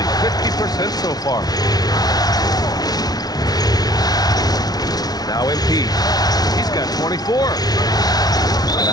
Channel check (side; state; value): right; late; 0.19 ms